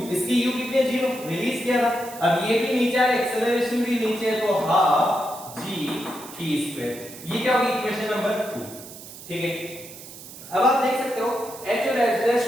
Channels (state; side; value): noise; right; hiss, 15 dB below the sound